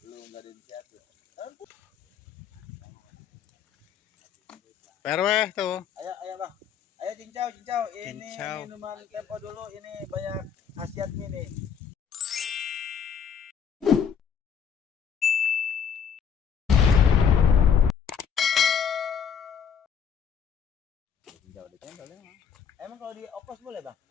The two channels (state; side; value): quieter; right; 7.5 dB